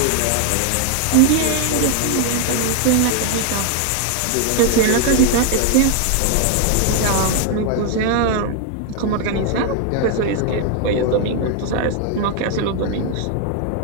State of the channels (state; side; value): different; both; correlation 0.00